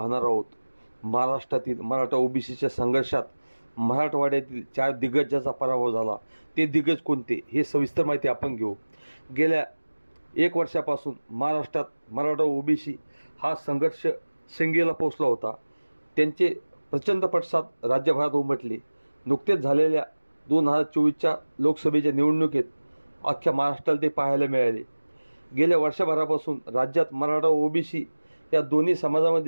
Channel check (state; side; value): inverted; both; correlation -1.00